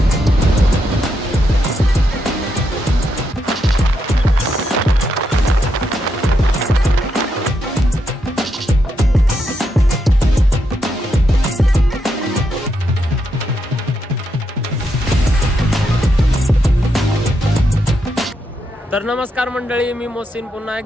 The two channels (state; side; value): normal; both; correlation 0.81